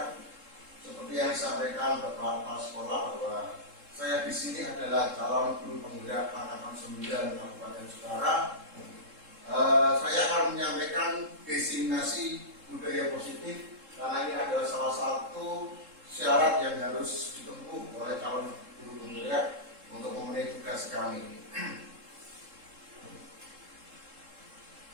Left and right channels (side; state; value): left; late; 3.7 ms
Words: Seperti yang disampaikan Bapak Kepala Sekolah bahwa saya di sini adalah calon guru penggerak angkatan 9 Kabupaten Jepara. Saya akan menyampaikan desiminasi budaya positif karena ini adalah salah satu syarat yang harus ditempuh oleh calon guru penggerak untuk memenuhi tugas kami.